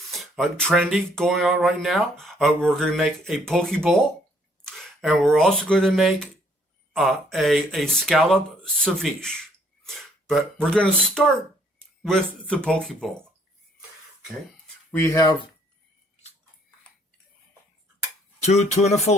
trendy going on right now. We're going to make a poke bowl, and we're also going to make a scallop ceviche. But we're going to start with the poke bowl. Okay, we have 2 tuna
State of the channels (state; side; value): normal; both; correlation 0.64